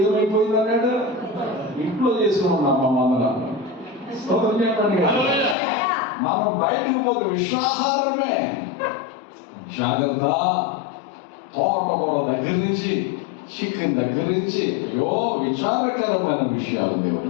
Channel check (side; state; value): right; drops out; at 5.6 s